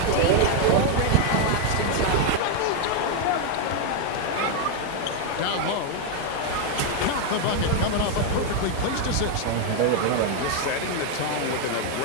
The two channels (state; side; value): different; both; correlation 0.01